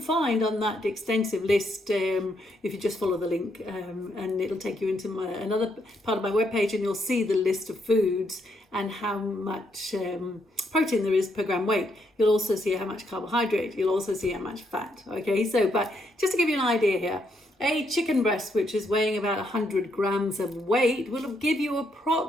on that extensive list if you just follow the link, and it'll take you into another part of my webpage, and you'll see the list of foods and how much protein there is per gram weight. You'll also see how much carbohydrate, you'll also see how much fat, okay? So, but just to give you an idea here, a chicken breast, which is weighing about 100 grams of weight, will give you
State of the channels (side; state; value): both; normal; correlation 0.76